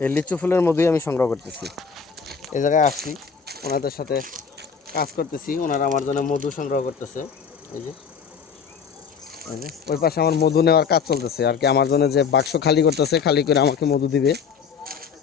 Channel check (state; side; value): quieter; right; 6.3 dB